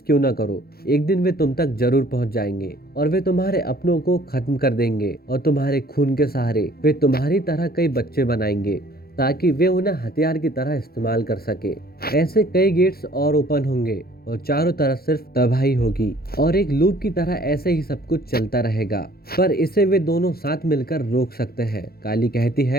क्यों ना करो, एक दिन वे तुम तक जरूर पहुंच जाएंगे और वे तुम्हारे अपनों को खत्म कर देंगे और तुम्हारे खून के सहारे वे तुम्हारी तरह कई बच्चे बनाएंगे ताकि वे उन्हें हथियार की तरह इस्तेमाल कर सके। ऐसे कई गेट्स और ओपन होंगे और चारों तरफ सिर्फ तबाही होगी और एक लूप की तरह ऐसे ही सब कुछ चलता रहेगा, पर इसे वे दोनों साथ मिलकर रोक सकते हैं। काली कहती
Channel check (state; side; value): late; right; 0.44 ms